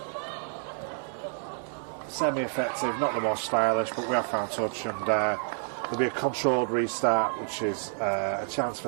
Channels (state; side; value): silent; left; digital silence